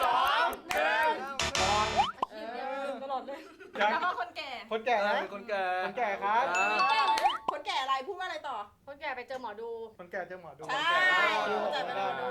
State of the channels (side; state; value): both; identical; correlation 1.00